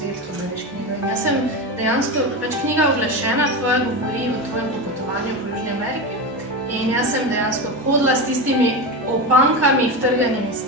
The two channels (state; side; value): normal; both; correlation 0.19